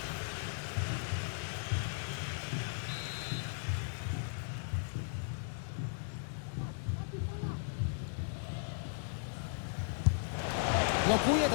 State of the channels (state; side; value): silent; right; 53 dB below the other